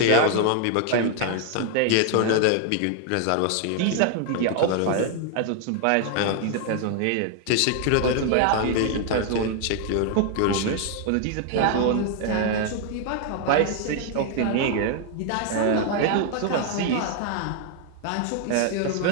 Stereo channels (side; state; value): both; different; correlation 0.00